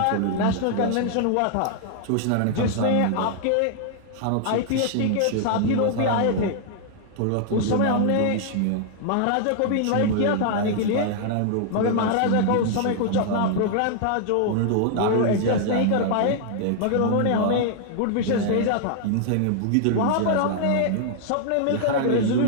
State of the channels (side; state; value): both; different; correlation -0.01